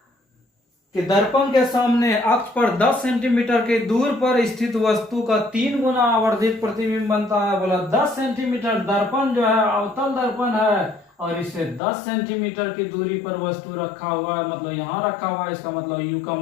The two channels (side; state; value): right; drops out; at 11.8 s